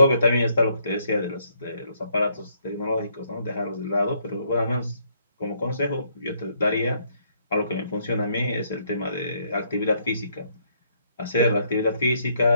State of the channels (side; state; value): both; inverted; correlation -0.71